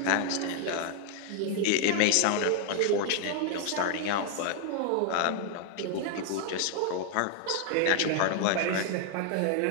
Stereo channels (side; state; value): both; different; correlation 0.00